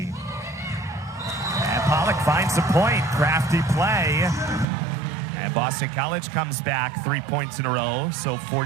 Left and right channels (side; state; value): left; drops out; at 4.7 s